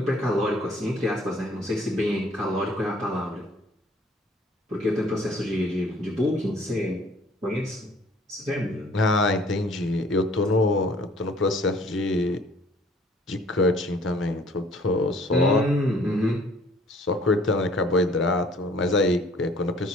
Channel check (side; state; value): both; normal; correlation 0.56